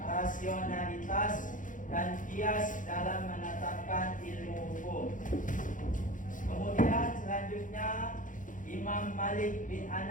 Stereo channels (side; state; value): right; late; 0.38 ms